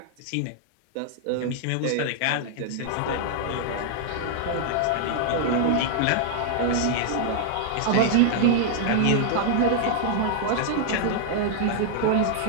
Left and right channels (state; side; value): different; both; correlation -0.01